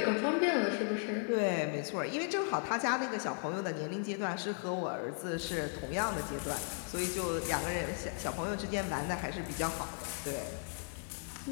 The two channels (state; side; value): silent; right; 54 dB below the other